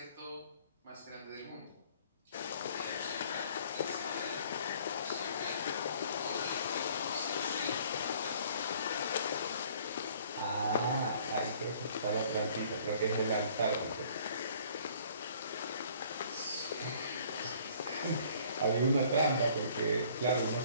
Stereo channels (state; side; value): inverted; both; correlation -0.56